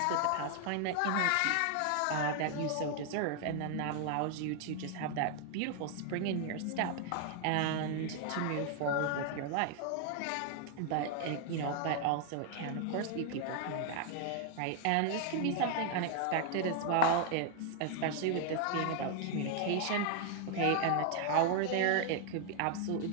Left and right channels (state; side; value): different; both; correlation 0.00